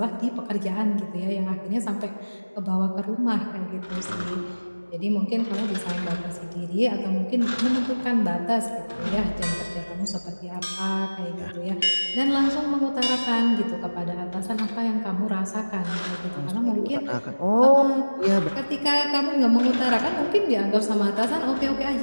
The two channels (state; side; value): inverted; both; correlation -1.00